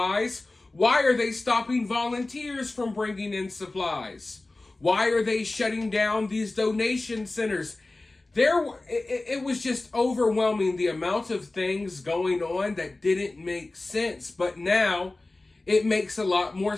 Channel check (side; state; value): right; quieter; 3.0 dB